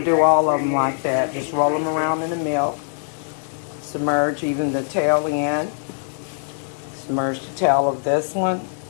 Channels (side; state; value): right; silent; 64 dB below the other